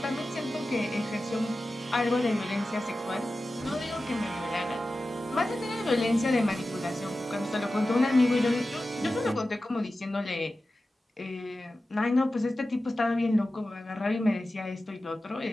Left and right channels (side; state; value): both; normal; correlation 0.94